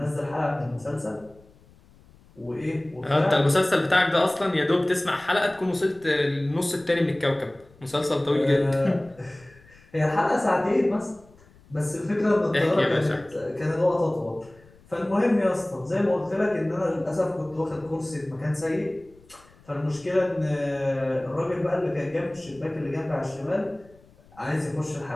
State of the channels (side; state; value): left; noise; rumble, 27 dB below the sound